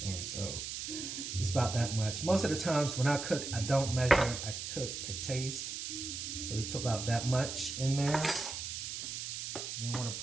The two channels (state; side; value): noise; right; hiss, 5 dB below the sound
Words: So it's about that much. Most of the times when I cook, I don't measure. I cook to taste. So we put about that much in there. Then I want to